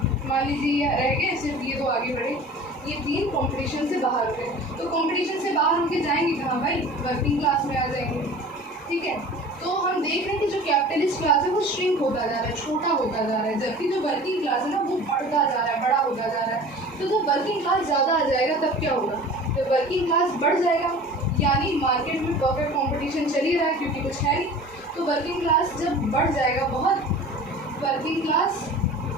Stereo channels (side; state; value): both; normal; correlation 0.41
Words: मान लीजिए ये रह गए, सिर्फ ये तो आगे बढ़े, ये 3 कॉम्पिटिशन से बाहर हो गए। तो कॉम्पिटिशन से बाहर होकर जाएंगे कहाँ भाई? वर्किंग क्लास में आ जाएंगे, ठीक है। तो हम देख रहे हैं कि जो कैपिटलिस्ट क्लास है वो श्रिंक होता जा रहा है, छोटा होता जा रहा है, जबकि जो वर्किंग क्लास है ना वो बढ़ता जा रहा है, बड़ा होता जा रहा है। तो जब वर्किंग क्लास ज़्यादा आ जाएगा तब क्या होगा? जब वर्किंग क्लास बढ़ जाएगा, यानी मार्केट में परफेक्ट कॉम्पिटिशन चल ही रहा है क्योंकि कुछ है नहीं, तो वर्किंग क्लास जब बढ़ जाएगा बहुत, वर्किंग क्लास